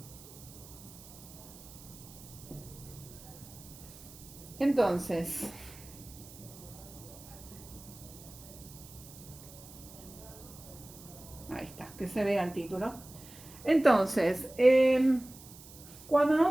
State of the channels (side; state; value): right; noise; hiss, 18 dB below the sound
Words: Entonces, ahí está, que se vea el título. Entonces, cuando